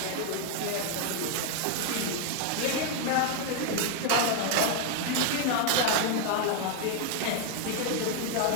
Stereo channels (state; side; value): different; both; correlation 0.00